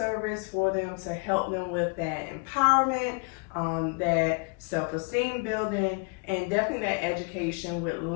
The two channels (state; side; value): quieter; right; 34.7 dB